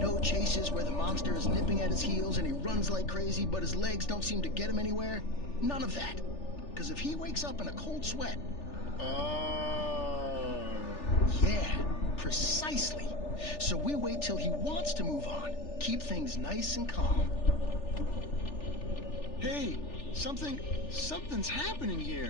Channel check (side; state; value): right; late; 3.4 ms